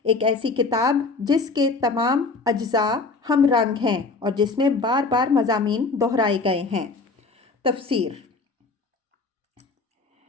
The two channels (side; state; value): right; quieter; 3.9 dB